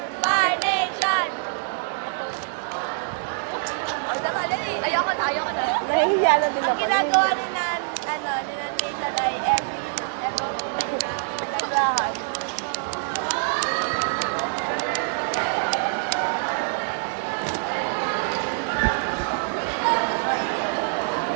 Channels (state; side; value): silent; left; digital silence